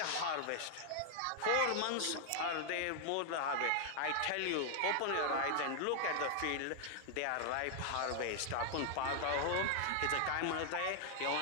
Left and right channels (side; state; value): both; different; correlation 0.00